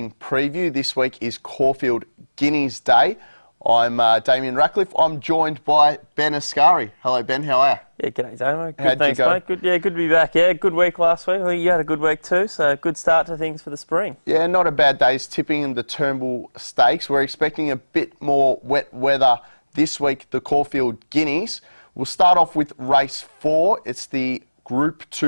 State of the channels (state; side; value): inverted; both; correlation -1.00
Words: preview. This week is Caulfield Guineas Day. I'm Damien Ractliffe. I'm joined by Ben Asgari. Hello Ben, how are you? Yeah, g'day Damo. Good, How'd thanks you go? mate. Good to be back. Yeah, good week last week. I think you had a good week too, so good start to things for the spring. Yeah, not a bad day's tipping in the Turnbull Stakes. We're expecting a bit more wet weather this week, the Caulfield Guineas. We'll start off with race 4. It's the Group